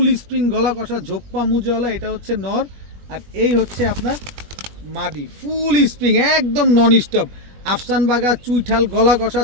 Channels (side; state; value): left; late; 21 ms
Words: স্প্রিং গলা কষা, ঝোপ্পা মুজওয়ালা। এটা হচ্ছে নর, আর এই হচ্ছে আপনার মাদি, ফুল স্প্রিং একদম নন স্টপ। আফসান বাঘা, চুইঠাল, গলা কষা,